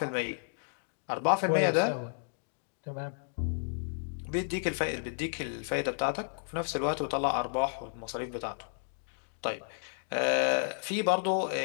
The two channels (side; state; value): right; silent; digital silence